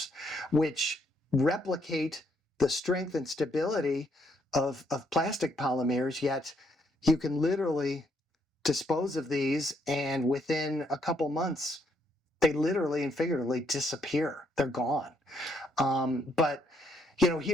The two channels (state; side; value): normal; both; correlation 0.73